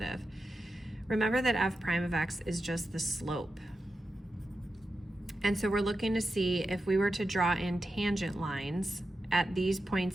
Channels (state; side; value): normal; both; correlation 0.91